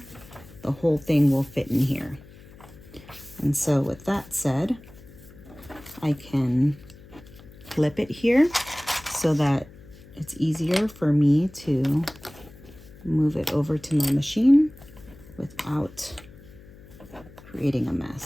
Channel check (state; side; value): noise; left; hum, 21 dB below the sound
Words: the whole thing will fit in here. And so with that said, I can flip it here so that it's easier for me to move it over to my machine without creating a